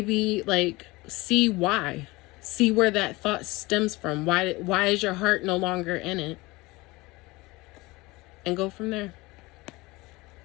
like, see why. See where that thought stems from. Why is your heart no longer in it? And go from there.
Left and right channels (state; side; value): quieter; right; 22.2 dB